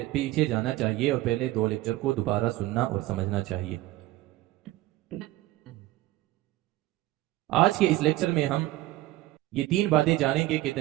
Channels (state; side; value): quieter; left; 17.1 dB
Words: जाना चाहिए और पहले 2 लेक्चर को दोबारा सुनना और समझना चाहिए। आज के इस लेक्चर में हम ये 3 बातें जानेंगे कि